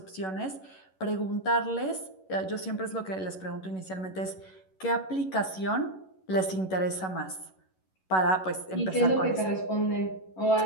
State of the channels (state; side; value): late; right; 11 ms